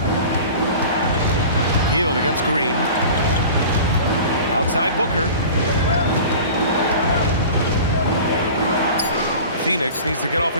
Hield against Green. Outside Booker. Phoenix needs to get off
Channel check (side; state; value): both; inverted; correlation -0.39